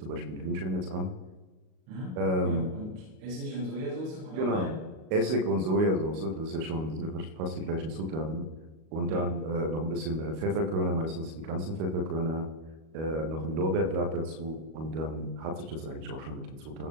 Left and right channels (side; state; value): left; late; 38 ms